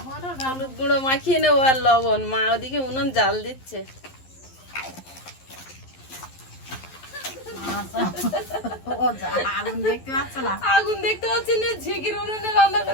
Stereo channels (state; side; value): late; right; 11 ms